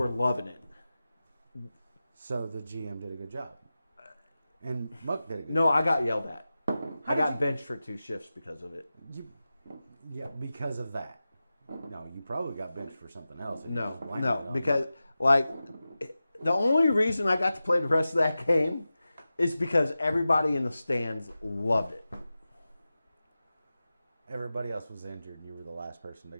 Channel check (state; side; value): inverted; both; correlation -0.94